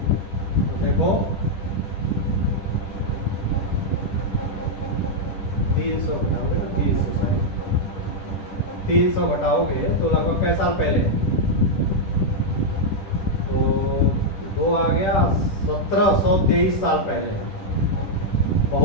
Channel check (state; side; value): late; right; 10 ms